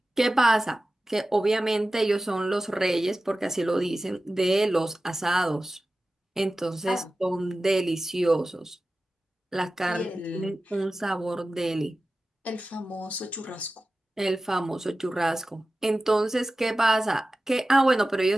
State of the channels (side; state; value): both; normal; correlation 0.95